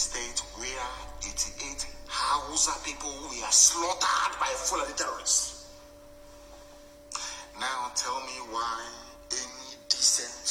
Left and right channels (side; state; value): both; identical; correlation 1.00